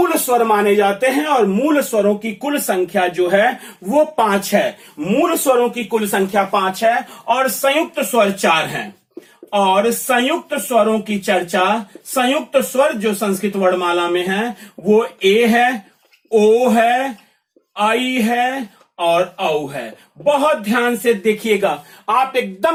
स्वर माने जाते हैं। और मूल स्वरों की कुल संख्या जो है वो 5 है। मूल स्वरों की कुल संख्या 5 है और संयुक्त स्वर 4 हैं। और संयुक्त स्वरों की चर्चा, संयुक्त स्वर जो संस्कृत वर्णमाला में है वो ए है, ओ है, आई है और औ है। बहुत ध्यान से देखिएगा, आप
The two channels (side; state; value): both; identical; correlation 1.00